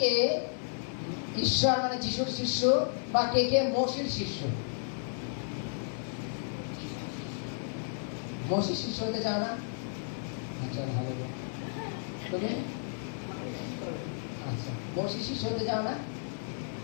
কে ঈশ্বর মানে যিশুর শিষ্য বা কে কে মসির শিষ্য? মসির শিষ্য হতে চাও না? আচ্ছা, হালেলুয়া। তুমি আচ্ছা, মসির শিষ্য হতে চাও না?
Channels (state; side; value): silent; right; 56 dB below the other